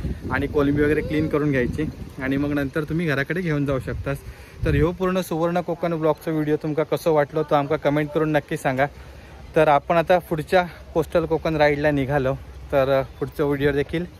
आणि कोलंबी वगैरे क्लीन करून घ्यायची आणि मग नंतर तुम्ही घराकडे घेऊन जाऊ शकता. तर ह्यो पूर्ण सुवर्ण कोकण ब्लॉगचा व्हिडिओ तुमका कसं वाटलो तो आमका कमेंट करून नक्की सांगा. तर आपण आता पुढच्या कोस्टल कोकण राईडला निघालो, तर पुढचा व्हिडिओ देखील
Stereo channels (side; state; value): both; identical; correlation 1.00